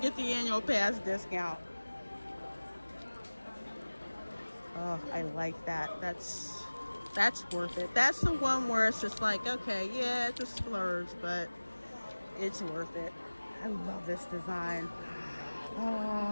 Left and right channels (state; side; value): inverted; both; correlation -1.00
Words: get the annual pass discount. Oh, I like that. That's worth it. That's the one where it's just like, okay, yeah, it's a splurge, but it's worth it. I love this design.